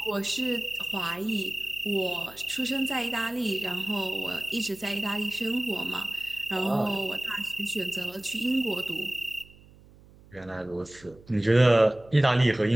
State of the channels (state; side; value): noise; right; hum, 24 dB below the sound